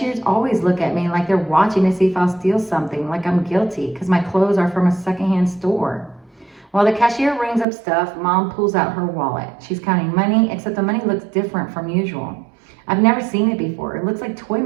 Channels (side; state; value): left; drops out; at 7.7 s